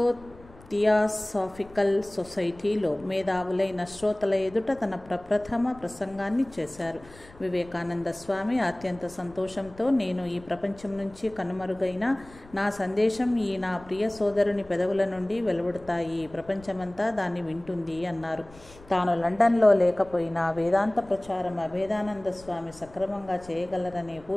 థియాసాఫికల్ సొసైటీలో మేధావులైన శ్రోతల ఎదుట తన ప్రప్రథమ ప్రసంగాన్ని చేశారు. వివేకానంద స్వామి అత్యంత సంతోషంతో, నేను ఈ ప్రపంచం నుంచి కనుమరుగైన నా సందేశం ఈ నా ప్రియ సోదరుని పెదవుల నుండి వెలువడతాయి, ప్రపంచమంతా దాన్ని వింటుంది అన్నారు. తాను లండన్లో లేకపోయినా వేదాంత ప్రచారం అభేదానంద స్వామి సక్రమంగా చేయగలరనే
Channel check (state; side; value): noise; left; rumble, 22 dB below the sound